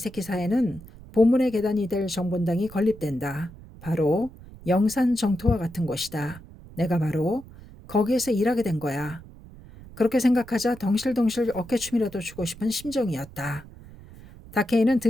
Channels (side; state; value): right; noise; rumble, 18 dB below the sound